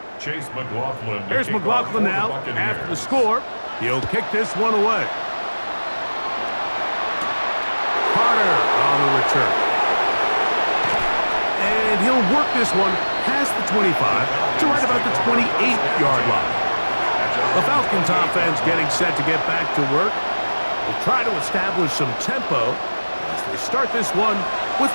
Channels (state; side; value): inverted; both; correlation -1.00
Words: Chase McLaughlin. Here's McLaughlin now after the score. He'll kick this one away. Carter on the return. And he'll work this one past the 25 to right about the 28-yard line. The Falcons offense getting set to get back to work. They'll try to establish some tempo as they start this one with